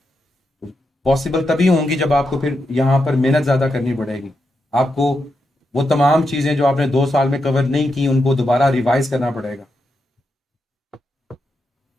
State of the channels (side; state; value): both; normal; correlation 0.85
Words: पॉसिबल तभी होंगी जब आपको फिर यहाँ पर मेहनत ज़्यादा करनी पड़ेगी। आपको वो तमाम चीज़ें जो आपने 2 साल में कवर नहीं की उनको दोबारा रिवाइज करना पड़ेगा।